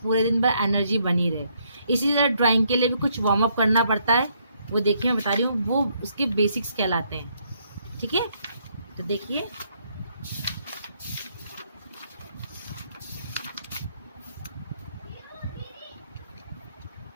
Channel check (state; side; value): inverted; both; correlation -0.71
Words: दिन भर एनर्जी बनी रहे। इसी तरह ड्राइंग के लिए भी कुछ वार्म अप करना पड़ता है। वो देखिए, मैं बता रही हूँ, वो उसके बेसिक्स कहलाते हैं, ठीक है। तो देखिए,